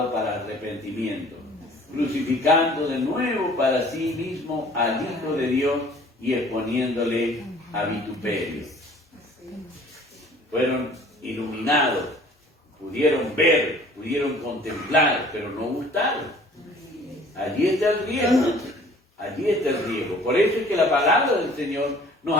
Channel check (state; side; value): normal; both; correlation 0.52